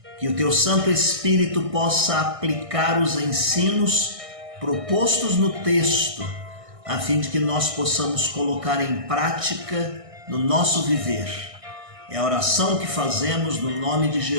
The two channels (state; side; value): late; left; 1.6 ms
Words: que o Teu Santo Espírito possa aplicar os ensinos propostos no texto, a fim de que nós possamos colocar em prática no nosso viver. É a oração que fazemos no nome de